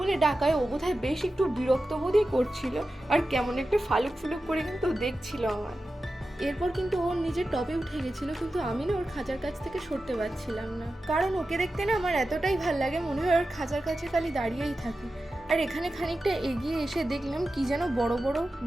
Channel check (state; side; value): normal; both; correlation 0.93